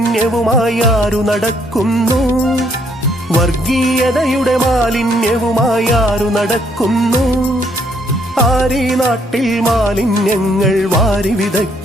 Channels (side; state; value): both; normal; correlation 0.69